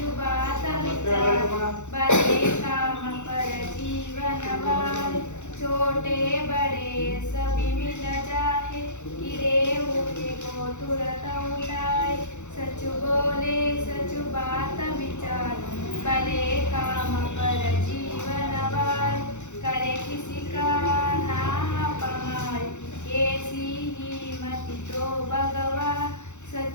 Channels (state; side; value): late; right; 0.84 ms